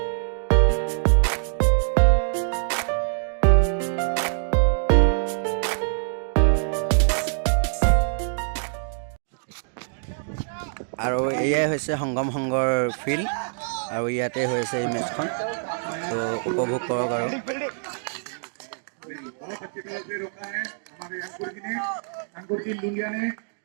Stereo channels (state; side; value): silent; left; digital silence